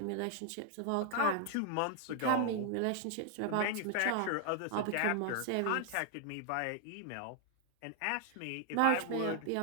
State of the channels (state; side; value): different; both; correlation 0.00